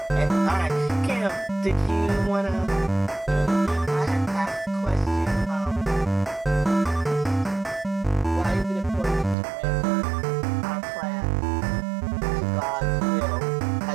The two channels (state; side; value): drops out; left; at 9.3 s